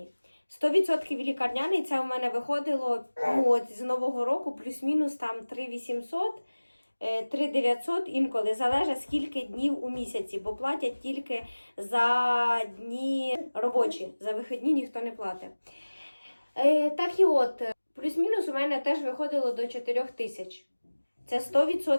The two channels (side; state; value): both; inverted; correlation -1.00